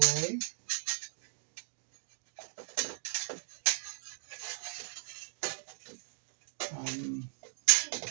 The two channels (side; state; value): left; silent; digital silence